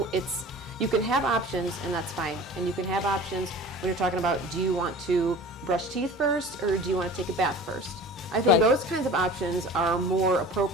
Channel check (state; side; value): normal; both; correlation 0.41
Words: can have options, and that's fine. And you can have options when you're talking about, do you want to brush teeth first or do you want to take a bath first? I think those kinds of options are more